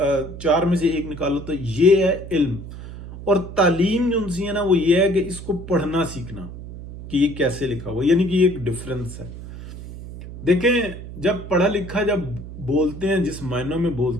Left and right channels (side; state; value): right; noise; hum, 12 dB below the sound